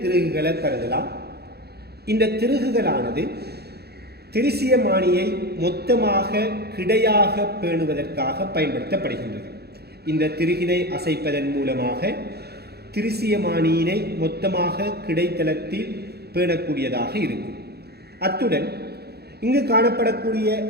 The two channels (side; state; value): left; late; 0.47 ms